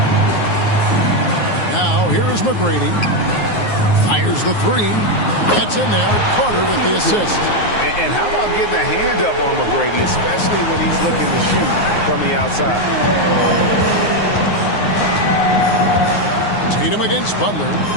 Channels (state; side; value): late; right; 9.5 ms